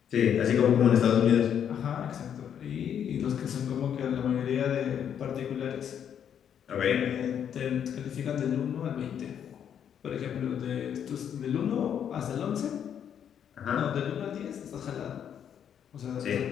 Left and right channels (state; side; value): quieter; right; 8.8 dB